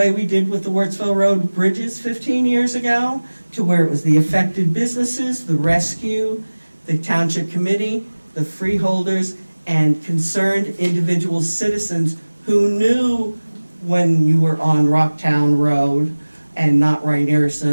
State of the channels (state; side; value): inverted; both; correlation -1.00